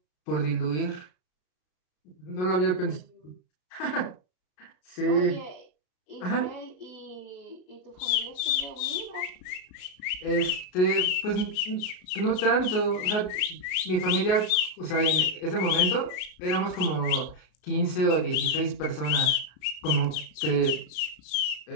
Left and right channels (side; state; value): right; late; 33 ms